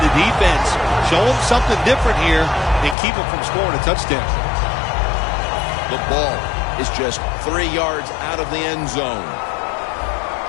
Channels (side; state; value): right; drops out; at 3.0 s